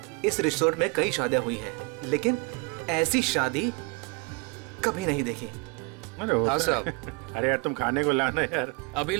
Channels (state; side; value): quieter; left; 28.1 dB